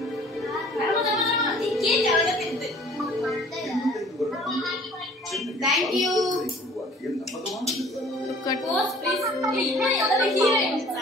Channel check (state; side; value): normal; both; correlation 0.51